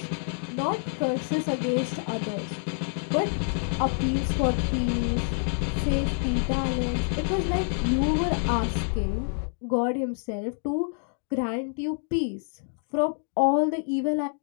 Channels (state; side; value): silent; right; 60 dB below the other